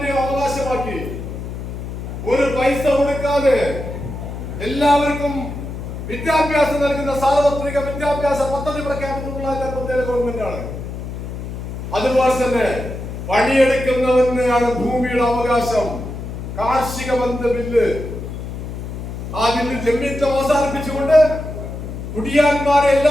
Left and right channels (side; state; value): left; noise; hum, 8 dB below the sound